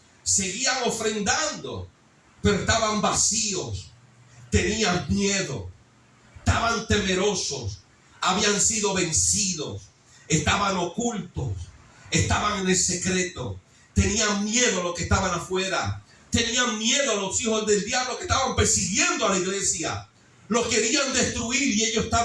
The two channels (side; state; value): both; identical; correlation 1.00